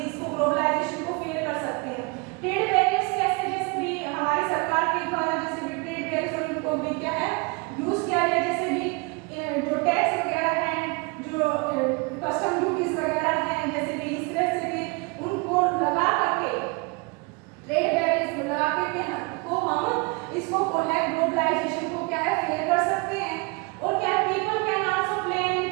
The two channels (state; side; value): quieter; left; 29.5 dB